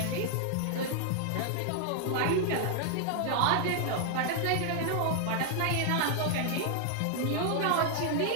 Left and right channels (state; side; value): different; both; correlation 0.00